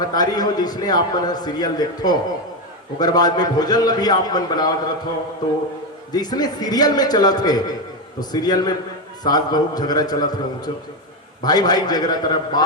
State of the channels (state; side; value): normal; both; correlation 0.10